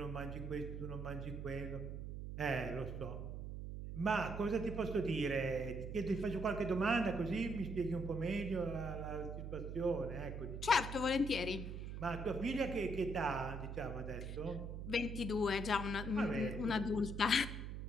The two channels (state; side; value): noise; right; hum, 6 dB below the sound